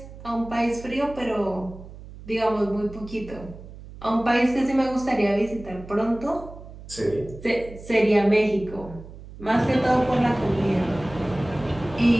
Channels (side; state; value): right; noise; hum, 16 dB below the sound